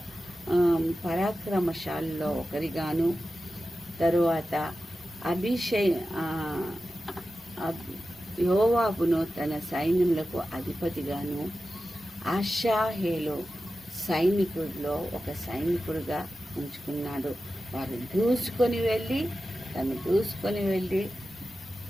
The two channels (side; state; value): both; normal; correlation 0.93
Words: పరాక్రమశాలలో ఒకరిగాను, తరువాత యోవాబును తన సైన్యములకు అధిపతిగాను, అషాహేలు సైనికుడిలో ఒక సైనికుడిగా ఉంచుకున్నాడు. వారు దూసుకొని వెళ్ళి